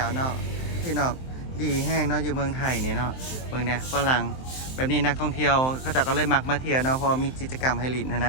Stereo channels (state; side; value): late; right; 23 ms